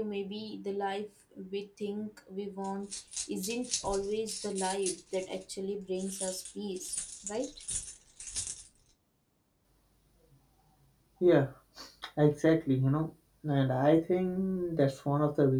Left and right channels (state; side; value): identical; both; correlation 1.00